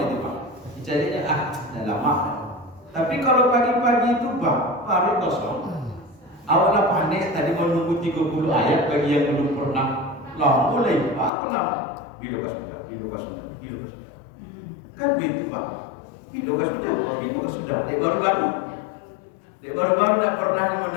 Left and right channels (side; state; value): right; drops out; at 11.3 s